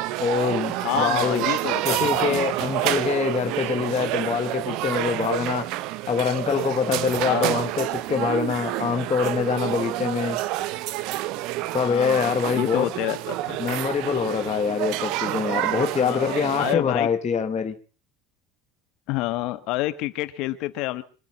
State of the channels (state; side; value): normal; both; correlation 0.37